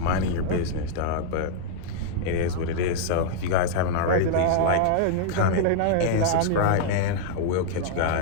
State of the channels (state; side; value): different; both; correlation -0.01